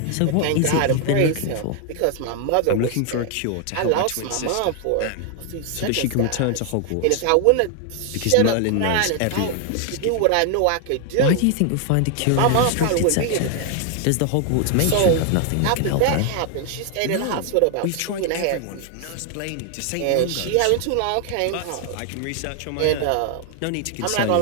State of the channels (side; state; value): both; different; correlation 0.00